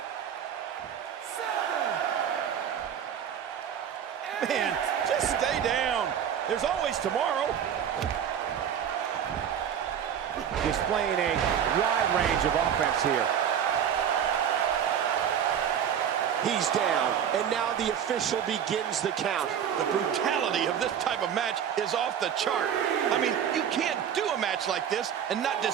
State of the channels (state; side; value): quieter; left; 8.8 dB